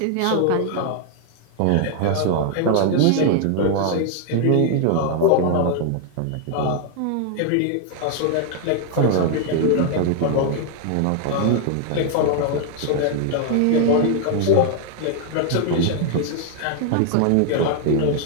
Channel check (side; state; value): both; different; correlation 0.00